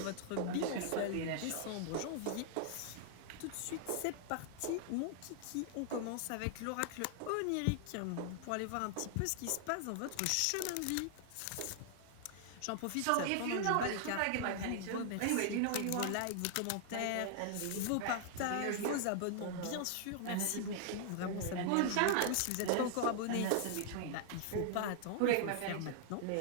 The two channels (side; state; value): both; different; correlation 0.00